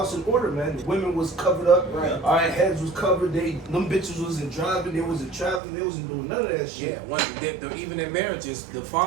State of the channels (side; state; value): left; drops out; at 5.6 s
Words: in order, man. The women was covered up. Right. All right, heads was covered. Them bitches wasn't driving. They wasn't traveling. They wasn't doing none of that shit. Yeah, even in marriages, the